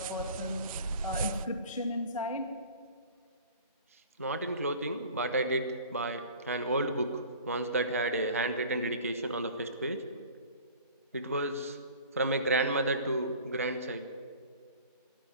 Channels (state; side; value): inverted; both; correlation -0.43